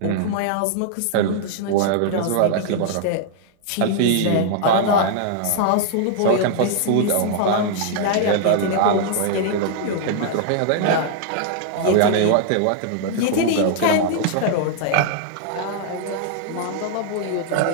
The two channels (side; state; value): both; different; correlation -0.01